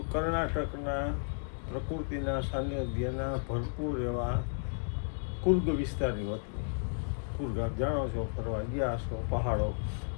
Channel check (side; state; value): right; silent; digital silence